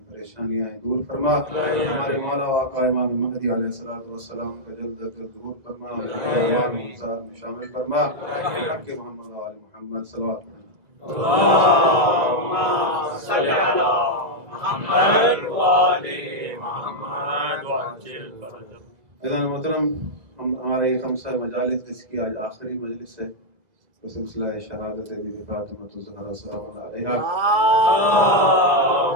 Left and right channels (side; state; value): left; late; 1.8 ms